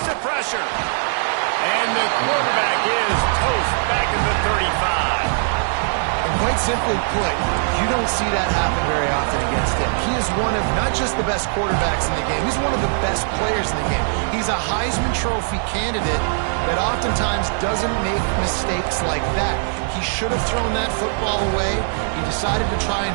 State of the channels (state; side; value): silent; left; digital silence